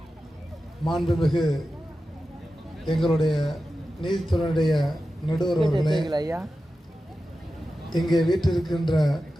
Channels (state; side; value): normal; both; correlation 0.93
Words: மாண்புமிகு எங்களுடைய நீதித்துறையுடைய நடுவர் அவர்களே, இங்கே வீட்டிருக்கின்ற